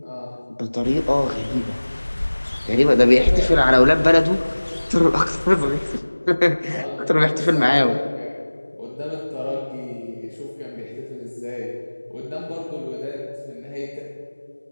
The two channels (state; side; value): inverted; both; correlation -1.00